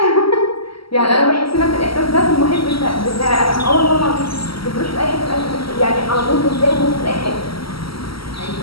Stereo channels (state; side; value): late; right; 0.75 ms